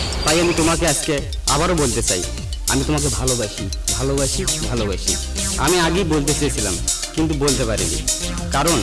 তাই আমি তোমাকে আজকে আবারও বলতে চাই, আমি তোমাকে ভালোবাসি। আমি আগেই বলতে চেয়েছিলাম কিন্তু বলতে পারিনি, কারণ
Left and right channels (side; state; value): both; identical; correlation 1.00